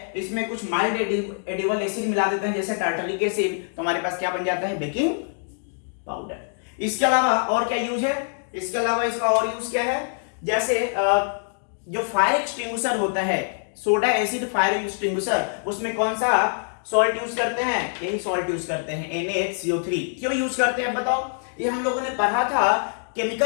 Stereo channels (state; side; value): silent; right; digital silence